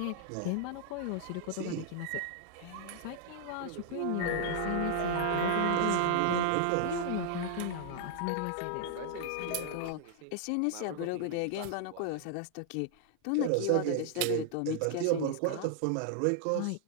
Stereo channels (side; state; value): both; different; correlation 0.00